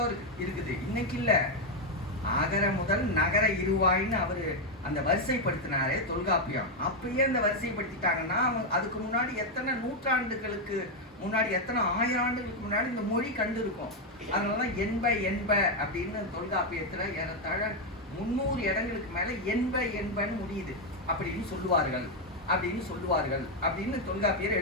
இருக்குது. இன்னைக்கு இல்ல, அகர முதல் நகர இருவாயின்னு அவரு அந்த வரிசைப்படுத்தினாரே தொல்காப்பியம். அப்பயே அந்த வரிசைப்படுத்திட்டாங்கன்னா அதுக்கு முன்னாடி எத்தனை நூற்றாண்டுகளுக்கு முன்னாடி, எத்தனை 1000 ஆண்டுகளுக்கு முன்னாடி இந்த மொழி கண்டு இருக்கும். அதனாலதான் என்ப அப்படின்னு தொல்காப்பியத்துல ஏறத்தாழ 300 இடங்களுக்கு மேல என்பன்னு முடியுது. அப்படின்னு சொல்லுவார்கள் அப்படின்னு தொல்காப்பியர்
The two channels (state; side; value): normal; both; correlation 0.03